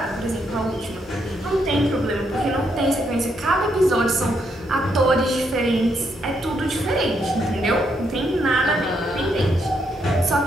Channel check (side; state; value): both; normal; correlation 0.76